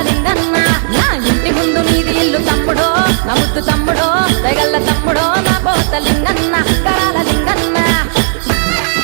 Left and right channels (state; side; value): silent; left; digital silence